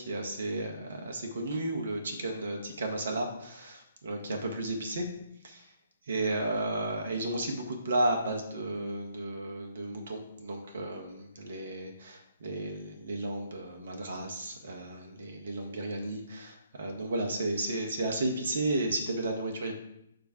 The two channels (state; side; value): inverted; both; correlation -0.71